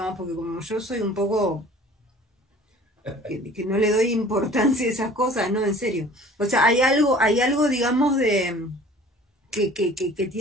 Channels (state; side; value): normal; both; correlation 0.47